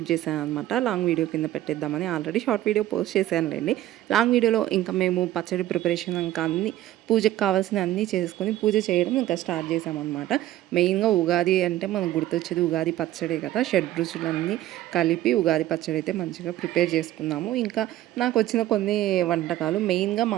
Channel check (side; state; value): left; quieter; 14.1 dB